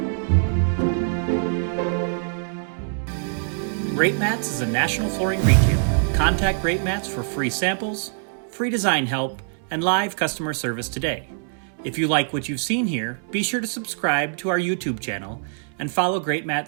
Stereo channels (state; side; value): silent; left; 63 dB below the other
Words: Greatmats is a national flooring retailer. Contact Greatmats for free samples, free design help, and live customer service today. If you like what you've seen here, be sure to subscribe to our YouTube channel and follow